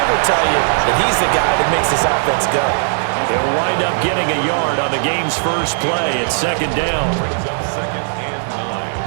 will tell you that he's the guy that makes this offense go. They'll wind up getting a yard on the game's first play at second down.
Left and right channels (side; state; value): left; silent; 56 dB below the other